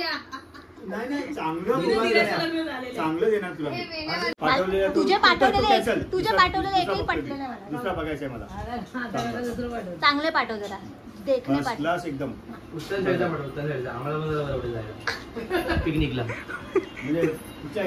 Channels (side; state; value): both; identical; correlation 1.00